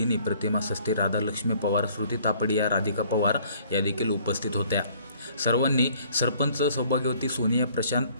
प्रतिमा सस्ते, राधालक्ष्मी पवार, श्रुती तापडिया, राधिका पवार या देखील उपस्थित होत्या. सर्वांनी सरपंच सौभाग्यवती सोनिया प्रशांत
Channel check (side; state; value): both; inverted; correlation -0.57